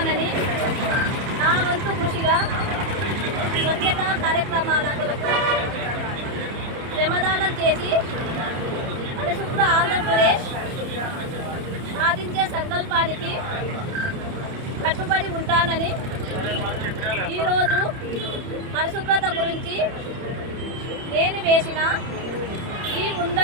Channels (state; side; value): late; left; 30 ms